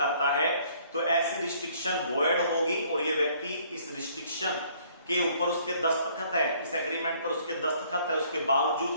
है तो ऐसी रिस्ट्रिक्शन वॉइड होगी और ये व्यक्ति इस रिस्ट्रिक्शन के ऊपर उसके दस्तखत है, इस एग्रीमेंट पर उसके दस्तखत है, उसके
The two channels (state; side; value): inverted; both; correlation -0.61